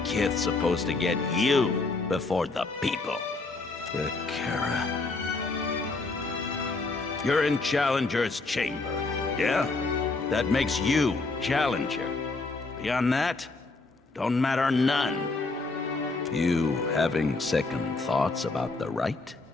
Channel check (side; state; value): right; quieter; 3.6 dB